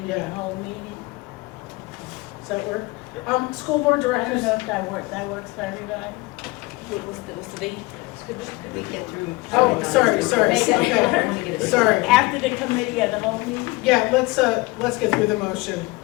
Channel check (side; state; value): right; quieter; 23.1 dB